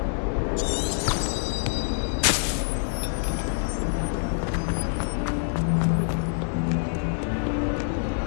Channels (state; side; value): silent; right; 61 dB below the other